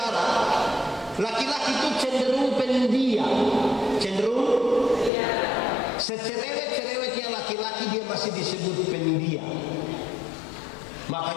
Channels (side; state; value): right; drops out; at 5.1 s